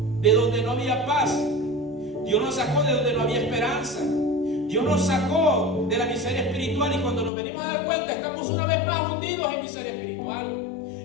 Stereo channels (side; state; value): right; drops out; at 7.3 s